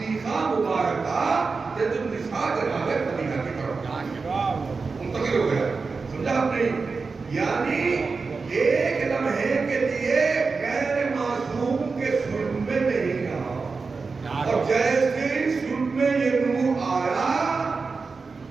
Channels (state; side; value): quieter; left; 4.5 dB